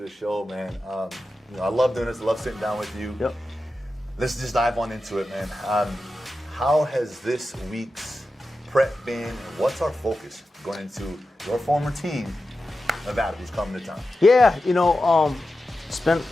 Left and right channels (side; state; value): both; normal; correlation 0.92